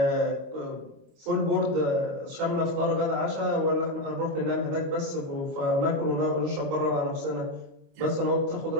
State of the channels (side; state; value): left; late; 29 ms